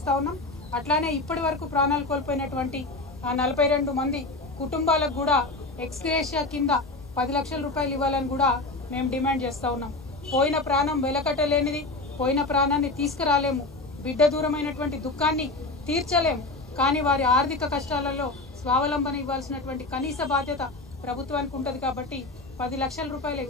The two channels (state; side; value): quieter; right; 3.1 dB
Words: ఉన్నాం। అట్లానే ఇప్పటి వరకు ప్రాణాలు కోల్పోయినటువంటి ఆ 42 మంది కుటుంబాలకు కూడా ఎక్స్గ్రేషియా కింద 10 లక్షల రూపాయలు ఇవ్వాలని కూడా మేము డిమాండ్ చేస్తూ ఉన్నాం। పోయిన ప్రాణం వెలకట్టలేనిది, పోయిన ప్రాణాన్ని తీసుకురాలేము, బిడ్డ దూరమైనటువంటి దుఃఖాన్ని తీర్చలేము, కానీ వారి ఆర్థిక కష్టాలలో స్వావలంబన ఇవ్వాల్సినటువంటి కనీస బాధ్యత ప్రభుత్వానికి ఉంటుంది। కాబట్టి 10 లక్షల రూపాయల